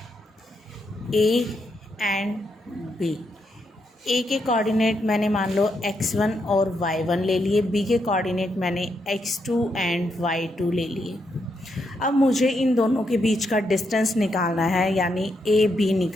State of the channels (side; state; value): both; normal; correlation 0.80